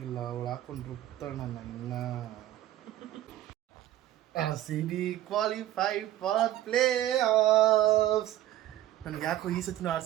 ಅವಳು ಹಾಕೊಂಡು ರುಬ್ತಾಳ ನನ್ನ ಇನ್ನ. RCB qualified for play offs. ನನಗೆ ಯಾಕೋ ಈ ಸತಿನೂ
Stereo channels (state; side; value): quieter; left; 13.8 dB